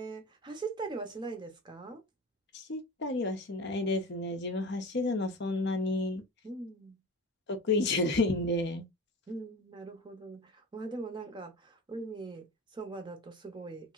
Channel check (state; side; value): normal; both; correlation 0.33